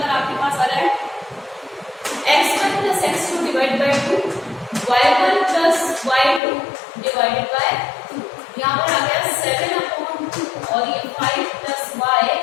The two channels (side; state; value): right; drops out; at 6.4 s